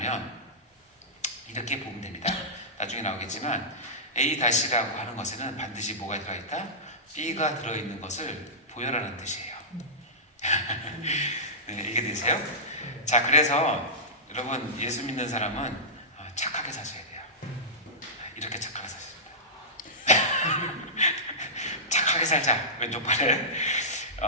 이렇게 보면 됩니다. 나중에 나오겠지만 A-라고 하는 것에는 반드시 뭐가 들어있다? B가 들어있는 것을 보여라는 뜻이에요. 네, 이게 되세요? 자, 그래서 여러분 예수 믿는 사람은 착하게 사셔야 돼요. 이렇게 착하게 사셔야 돼요. 착하게 살자. 왼쪽 팔에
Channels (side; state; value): both; normal; correlation -0.15